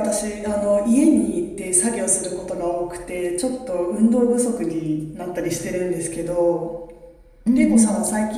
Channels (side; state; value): both; identical; correlation 1.00